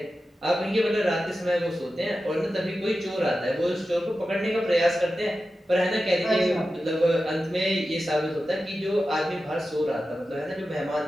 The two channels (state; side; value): normal; both; correlation 0.93